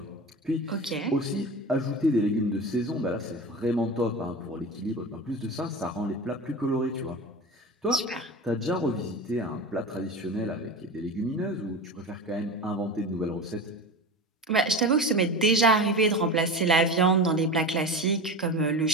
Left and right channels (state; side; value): normal; both; correlation 0.28